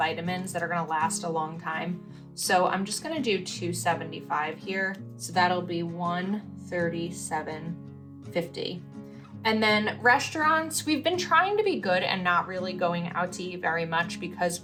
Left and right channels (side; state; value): both; identical; correlation 1.00